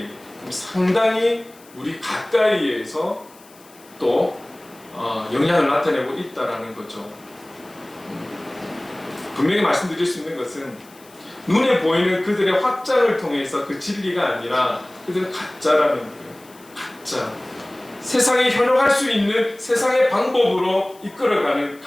상당히 우리 가까이에서 또 영향을 나타내고 있다라는 거죠. 분명히 말씀드릴 수 있는 것은 눈에 보이는 그들의 확장을 통해서 그 진리가 아니라 그들은 가짜라는 거예요. 가짜. 세상에 현혹할 수 있는 세상의 방법으로 이끌어가는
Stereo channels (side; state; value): left; noise; hiss, 25 dB below the sound